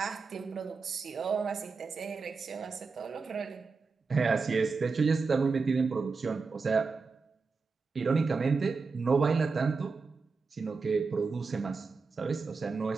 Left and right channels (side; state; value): left; quieter; 4.6 dB